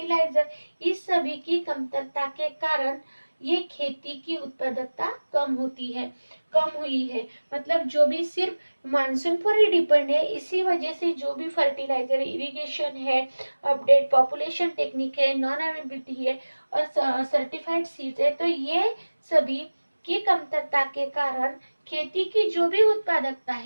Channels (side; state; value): both; inverted; correlation -1.00